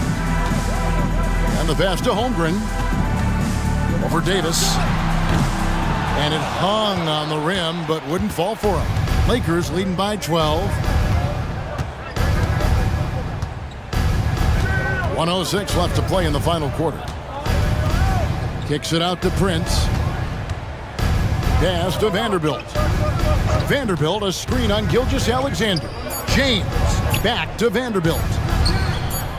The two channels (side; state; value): both; identical; correlation 1.00